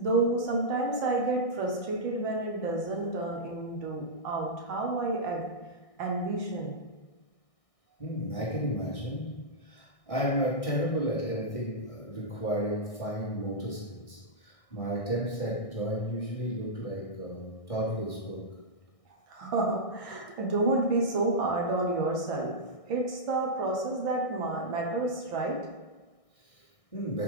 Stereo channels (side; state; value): right; late; 1.6 ms